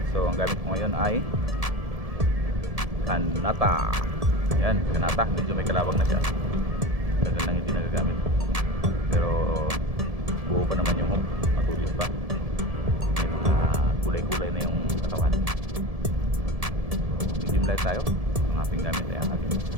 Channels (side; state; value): left; late; 1.7 ms